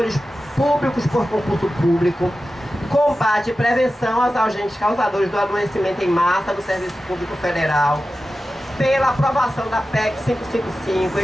públicos por concurso público. Combate e prevenção aos agentes causadores do adoecimento em massa do Serviço Público Federal. Pela aprovação da PEC 555,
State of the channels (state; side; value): normal; both; correlation 0.94